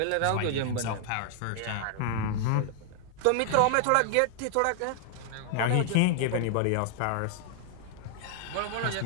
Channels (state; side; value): different; both; correlation 0.00